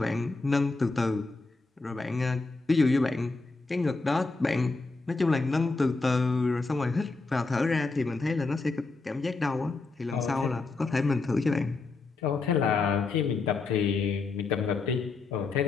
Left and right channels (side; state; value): right; quieter; 3.8 dB